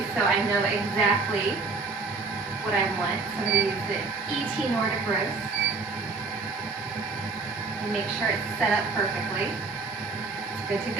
so I know exactly what I want. So I'm going to use the ET Nordic roast and make sure it's set up perfectly. It's good to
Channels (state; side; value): quieter; left; 4.1 dB